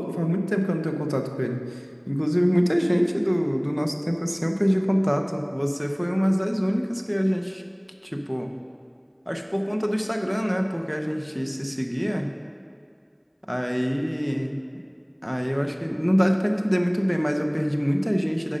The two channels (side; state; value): both; identical; correlation 1.00